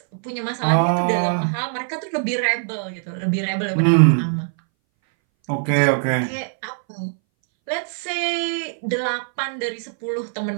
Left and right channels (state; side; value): silent; left; 61 dB below the other